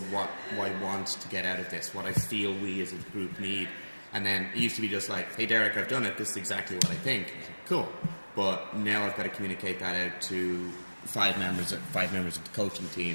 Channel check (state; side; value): inverted; both; correlation -1.00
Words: what I want to get out of this, what I feel we as a group need. And then it used to be just like, hey Derek, I've done it, this is exactly what I think. Cool. But now I've got to communicate that out to five members of the coaching